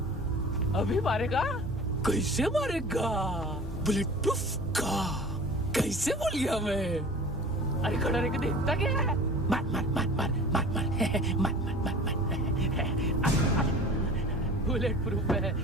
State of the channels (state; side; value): normal; both; correlation 0.41